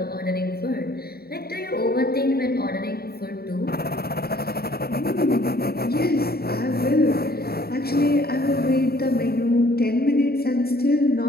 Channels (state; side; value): late; right; 0.45 ms